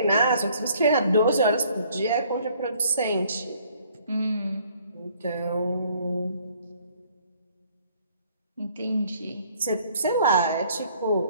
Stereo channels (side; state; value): both; inverted; correlation -0.60